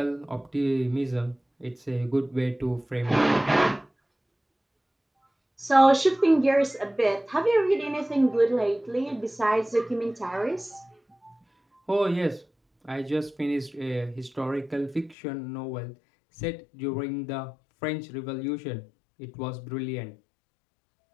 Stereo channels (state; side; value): drops out; right; at 15.2 s